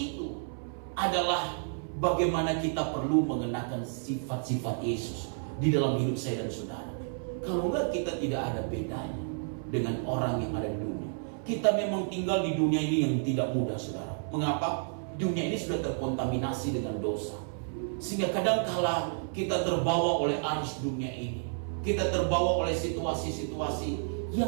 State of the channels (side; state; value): left; silent; 57 dB below the other